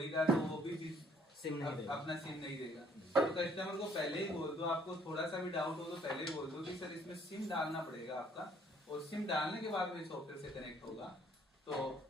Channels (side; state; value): both; normal; correlation 0.62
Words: का, तो वो भी सिम नहीं देगा, अपना सिम नहीं देगा। तो कस्टमर को पहले ही बोल दो, आपको थोड़ा सा भी डाउट हो तो पहले ही बोल दो कि सर इसमें सिम डालना पड़ेगा आपका, और सिम डालने के बाद में सॉफ्टवेयर से कनेक्ट होगा। तो